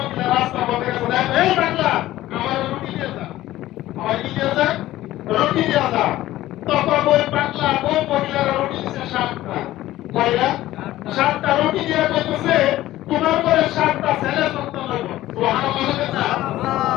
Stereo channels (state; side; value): quieter; right; 15.3 dB